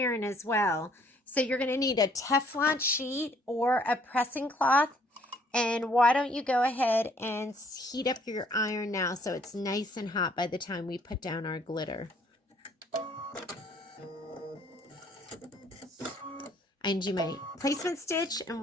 as well. So you're going to need a Teflon sheet or a pressing cloth. And why don't you go ahead and heat up your iron now so it's nice and hot by the time we put down our glitter. I do my placement stitch,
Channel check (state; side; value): normal; both; correlation 0.62